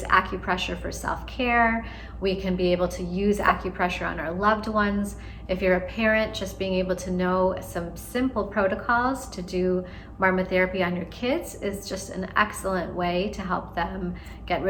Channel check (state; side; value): identical; both; correlation 1.00